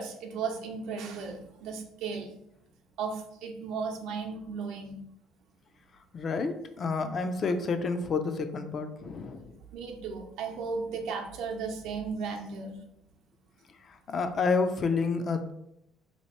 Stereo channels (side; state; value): both; normal; correlation 0.65